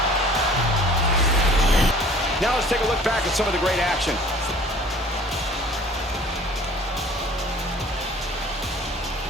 Now let's take a look back at some of the great action.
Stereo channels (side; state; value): both; normal; correlation 0.49